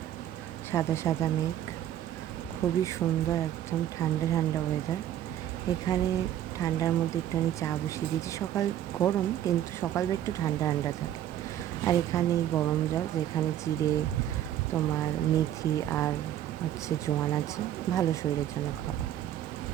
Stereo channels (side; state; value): left; quieter; 11.5 dB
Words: সাদা সাদা মেঘ, খুবই সুন্দর, একদম ঠান্ডা ঠান্ডা ওয়েদার। এখানে ঠান্ডার মধ্যে একটুখানি চা বসিয়ে দিয়েছি। সকাল গরম, কিন্তু সকালবেলা একটু ঠান্ডা ঠান্ডা থাকে। আর এখানে গরম জল, যেখানে জিরে, তোমার মেথি আর জোয়ান আছে, ভালো শরীরের জন্য খাওয়া।